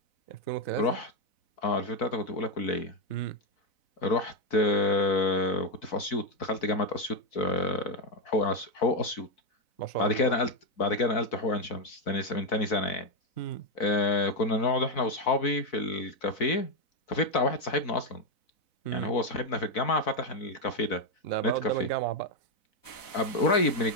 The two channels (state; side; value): late; right; 4.0 ms